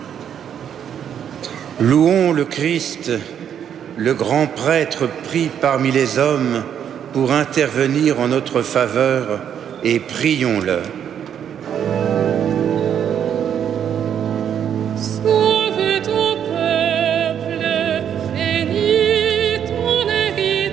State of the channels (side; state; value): left; quieter; 8.9 dB